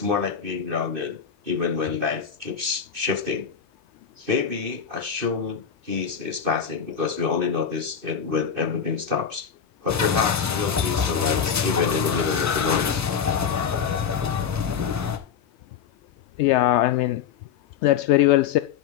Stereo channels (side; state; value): right; quieter; 7.4 dB